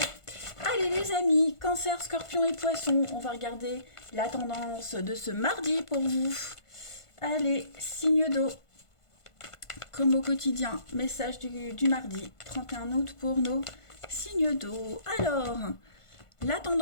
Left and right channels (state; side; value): late; right; 1.5 ms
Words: Allez les amis, Cancer, Scorpion et Poisson, on va regarder la tendance de ce mardi pour vous. Allez, signes d'eau, comme au quotidien, message du mardi 31 août pour nos signes d'eau. Alors, la